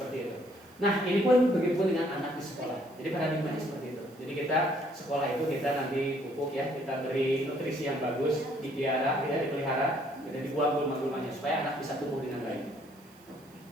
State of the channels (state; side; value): noise; right; hiss, 28 dB below the sound